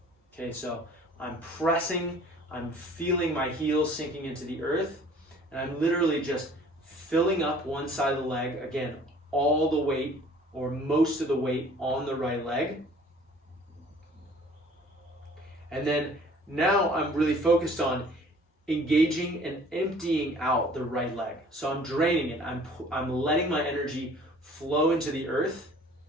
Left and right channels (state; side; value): normal; both; correlation 0.52